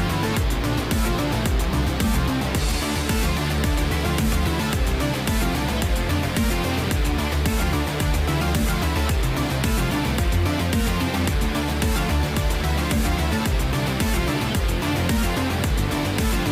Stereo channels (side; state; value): both; identical; correlation 1.00